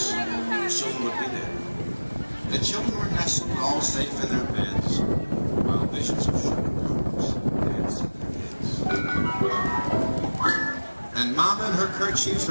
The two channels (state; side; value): inverted; both; correlation -1.00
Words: soon would be there. The children were nestled all safe in their beds, while visions of sugar plums danced in their heads. And Mama in her kerchief